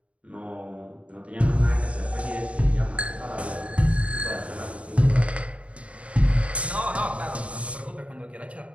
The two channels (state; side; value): late; left; 0.063 ms